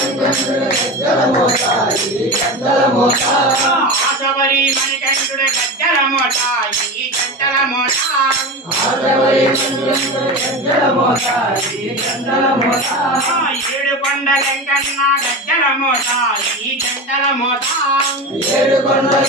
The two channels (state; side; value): normal; both; correlation 0.26